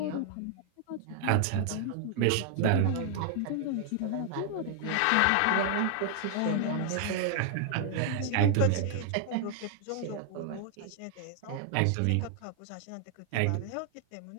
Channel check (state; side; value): different; both; correlation 0.00